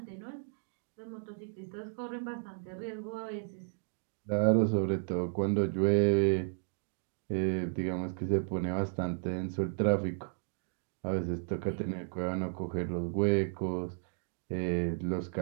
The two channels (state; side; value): silent; left; digital silence